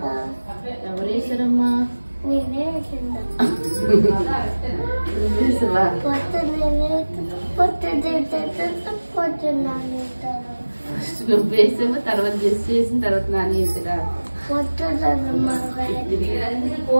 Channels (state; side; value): inverted; both; correlation -1.00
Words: ఎవరు వేసారమ్మా? నువ్వు వేసామో తర్వాత గెస్ట్ చేసిన తర్వాత నాని వేసారా?